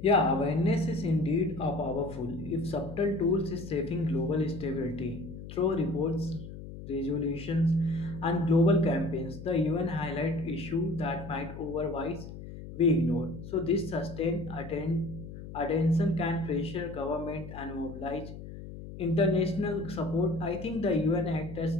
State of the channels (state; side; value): noise; left; hum, 12 dB below the sound